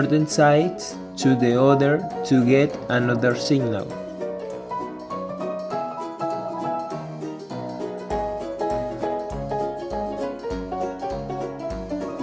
sides to the other to get another signal.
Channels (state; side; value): identical; both; correlation 1.00